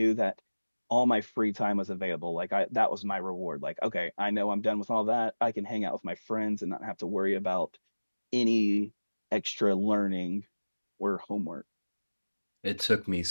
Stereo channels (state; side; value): inverted; both; correlation -1.00